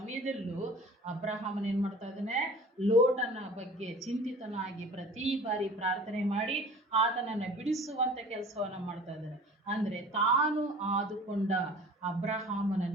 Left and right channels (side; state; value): both; normal; correlation 0.44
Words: ಅಬ್ರಹಾಮನ್ ಏನ್ ಮಾಡ್ತಾ ಇದ್ದಾನೆ, ಲೋಟನ ಬಗ್ಗೆ ಚಿಂತಿತನಾಗಿ ಪ್ರತಿ ಬಾರಿ ಪ್ರಾರ್ಥನೆ ಮಾಡಿ ಆತನನ್ನ ಬಿಡಿಸುವಂತ ಕೆಲಸವನ್ನ ಮಾಡ್ತಾ ಇದ್ದಾನೆ. ಅಂದ್ರೆ ತಾನು ಆದುಕೊಂಡ ಅಬ್ರಹಾಮನ